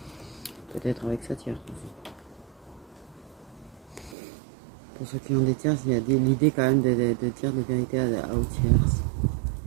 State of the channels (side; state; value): left; drops out; at 4.2 s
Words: Peut-être avec sa tierce aussi. Pour ceux qui ont des tierces, il y a l'idée quand même de dire des vérités aux tierces.